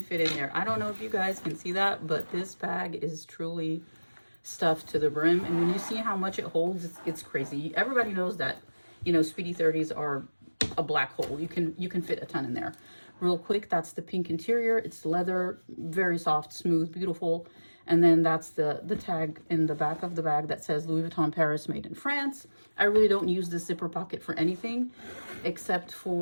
fit in there. I don't know if you guys can see that, but this bag is truly stuffed to the brim. And when you see how much it holds, it's crazy. Everybody knows that, Speedy 30s are a black hole. You can fit a ton in there. Real quick, that's the pink interior. It's leather, very soft, smooth, beautiful. And then that's the tag in the back of the bag that says Louis Vuitton Paris, made in France. I really don't use the zipper pocket for anything except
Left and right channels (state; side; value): inverted; both; correlation -1.00